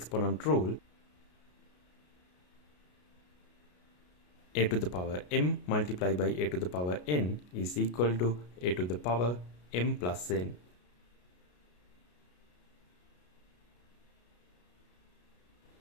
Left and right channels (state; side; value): late; right; 33 ms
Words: rule. A to the power m multiplied by a to the power n is equal to a to the power m plus n.